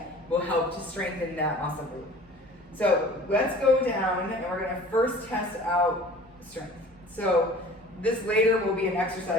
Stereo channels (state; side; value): normal; both; correlation 0.45